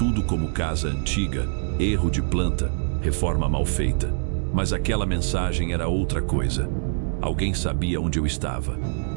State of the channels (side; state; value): left; silent; digital silence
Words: como casa antiga, erro de planta, reforma mal feita. Mas aquela mensagem era outra coisa. Alguém sabia onde eu estava.